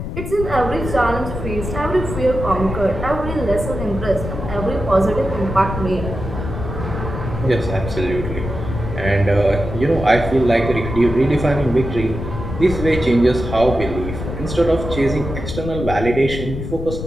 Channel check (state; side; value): noise; left; rumble, 6 dB below the sound